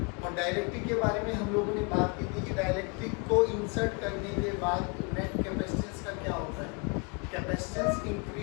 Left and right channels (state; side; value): quieter; right; 32.8 dB